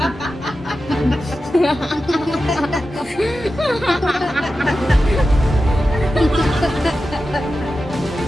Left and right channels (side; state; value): both; normal; correlation 0.92